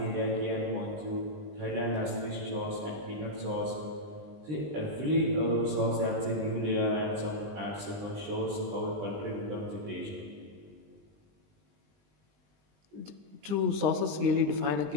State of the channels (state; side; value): late; left; 20 ms